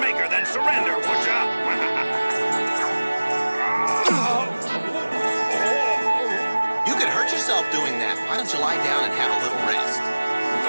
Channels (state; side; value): inverted; both; correlation -1.00